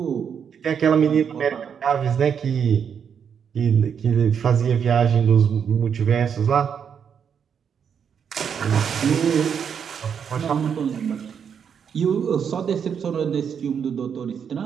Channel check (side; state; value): left; quieter; 7.4 dB